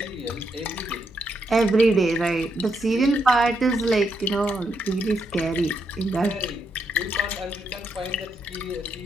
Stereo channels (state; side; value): normal; both; correlation 0.79